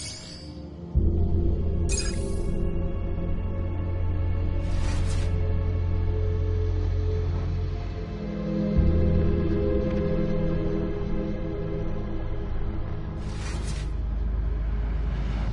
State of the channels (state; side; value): identical; both; correlation 1.00